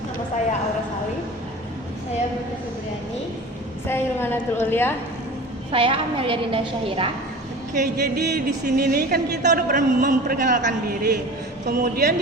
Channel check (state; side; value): normal; both; correlation 0.37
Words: Nama saya Aura Salim. Saya Buta Febriani. Saya Ilmanatul Ulia. Saya Amelia Dinda Syahira. Oke, jadi di sini nih kan kita udah pernah memperkenalkan diri. Kemudian